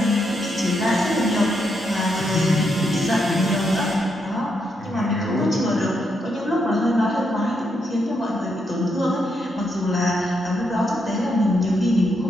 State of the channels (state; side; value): normal; both; correlation 0.80